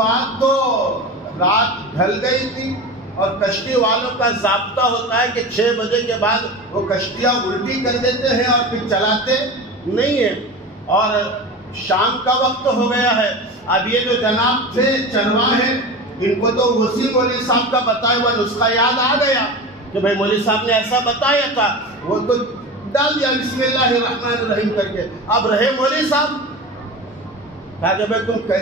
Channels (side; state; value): both; normal; correlation 0.29